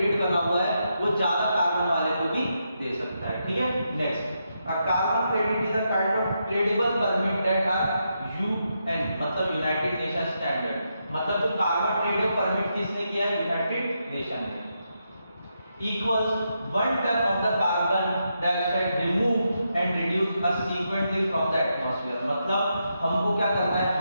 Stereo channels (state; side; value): inverted; both; correlation -0.83